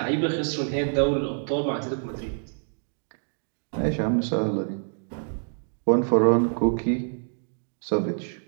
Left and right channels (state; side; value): silent; left; digital silence